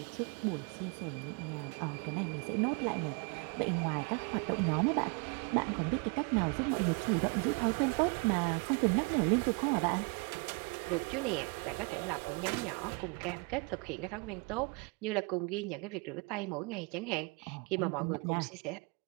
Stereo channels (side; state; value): left; quieter; 31.5 dB